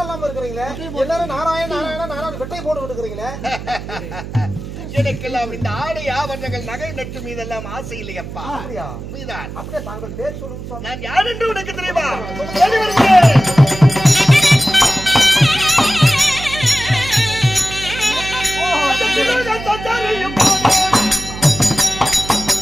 இல்லாம இருக்கிறீங்களே. எல்லாரும் நாராயண வெட்டையை போட்டுக்கிட்டு இருக்கிறீங்களே. எனக்கெல்லாம் இந்த ஆடை ஆபரணங்கள் நகை நட்டு மீதெல்லாம் ஆசை இல்லையப்பா. அப்படியே தாங்கள் பேர் சொல்லுங்க. நான் யார் என்று உனக்கு தெரியுமா?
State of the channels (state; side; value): noise; right; hum, 10 dB below the sound